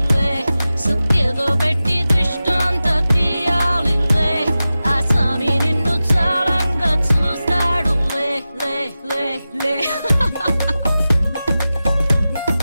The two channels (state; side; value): inverted; both; correlation -0.94